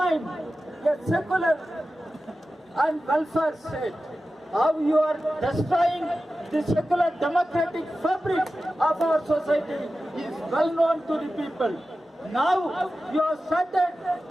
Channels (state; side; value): normal; both; correlation 0.94